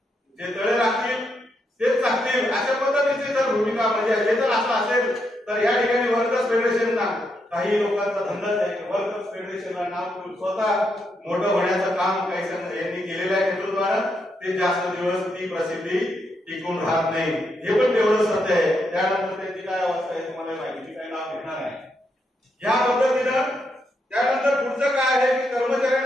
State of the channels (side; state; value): both; normal; correlation 0.80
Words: जे तळे राखतील तेच चाकतील, अशा पद्धतीची जर भूमिका म्हणजे हे जर असं असेल तर या ठिकाणी वर्कर्स फेडरेशनला काही लोकांचा धंदाच आहे. वर्कर्स फेडरेशनला नाव स्वतः मोठं होण्याचं काम काही यांनी केलेलं आहे नेतृत्वानं, ते जास्त दिवस ती प्रसिद्धी टिकून राहत नाही, हे पण तेवढं सत्य आहे. त्यानंतर त्यांची काय अवस्था आहे तुम्हाला माहिती, काही नाव घेणार आहे. या पद्धतीनं त्यानंतर पुढचं काय आहे की